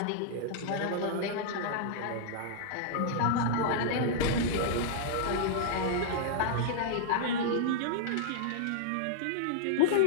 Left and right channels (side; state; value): both; different; correlation -0.02